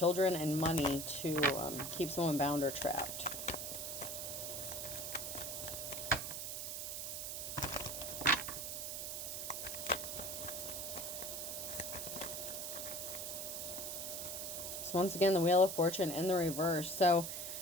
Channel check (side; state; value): right; noise; hiss, 4 dB below the sound